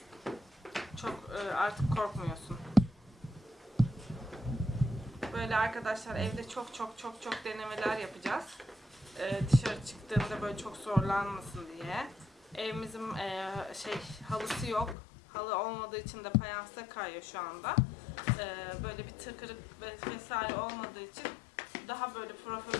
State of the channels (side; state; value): right; drops out; at 15.0 s